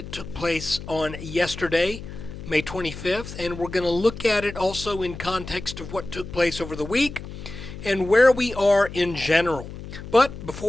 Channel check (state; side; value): noise; left; hum, 11 dB below the sound